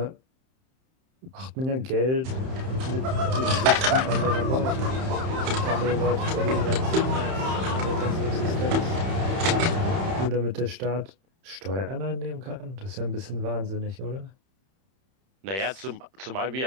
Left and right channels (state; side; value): late; left; 31 ms